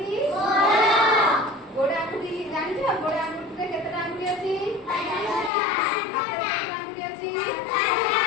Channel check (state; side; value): drops out; right; at 5.5 s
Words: ଗୋଡ଼ ଆଙ୍ଗୁଠି। ଜାଣିଛ ଗୋଡ଼ ଆଙ୍ଗୁଠିରେ କେତେଟା ଆଙ୍ଗୁଠି ଅଛି? ହାତରେ କେତେଟା ଆଙ୍ଗୁଠି ଅଛି?